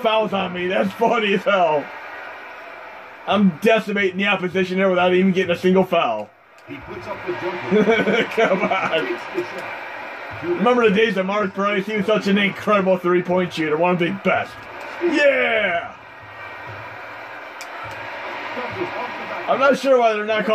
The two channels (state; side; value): identical; both; correlation 1.00